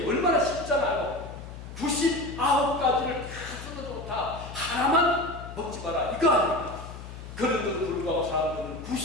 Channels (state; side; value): noise; left; hum, 12 dB below the sound